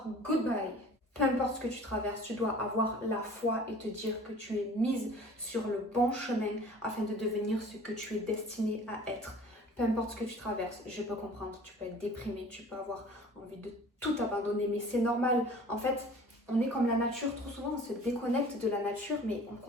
goodbye. Peu importe ce que tu traverses, tu dois avoir la foi et te dire que tu es mise sur le bon chemin afin de devenir ce que tu es destiné à être. Peu importe ce que tu traverses, je peux comprendre, tu peux être déprimé, tu peux avoir envie de tout abandonner, mais c'est normal. En fait, on est comme la nature, trop souvent on se déconnecte de la nature, mais on ne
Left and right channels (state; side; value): normal; both; correlation 0.46